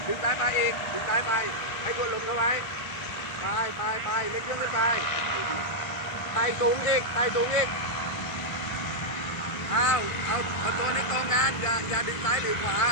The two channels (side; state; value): right; late; 1.5 ms